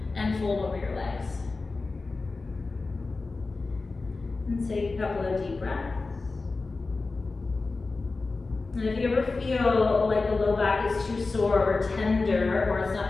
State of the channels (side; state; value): right; quieter; 3.8 dB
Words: and fold over your legs. And take a couple of deep breaths. And if you ever feel like the low back is too sore or tender, or it's